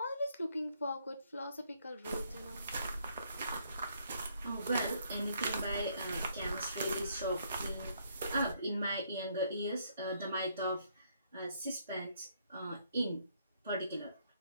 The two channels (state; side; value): inverted; both; correlation -0.70